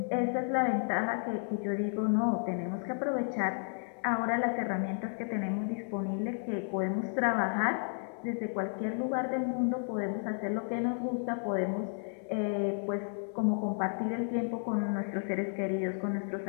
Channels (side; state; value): right; silent; 56 dB below the other